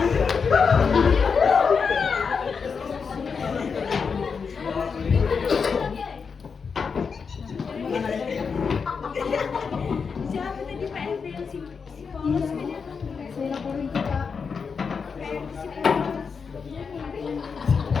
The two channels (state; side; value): quieter; right; 5.7 dB